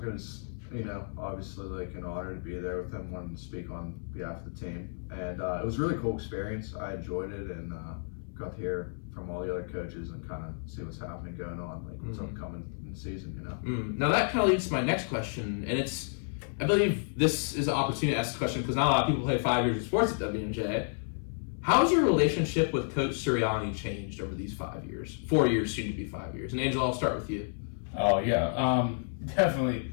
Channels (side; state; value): right; silent; 57 dB below the other